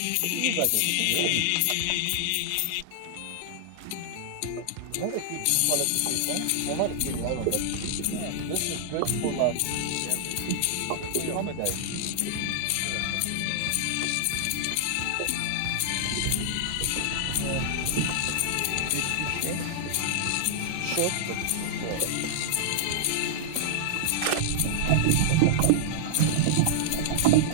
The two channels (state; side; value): different; both; correlation -0.01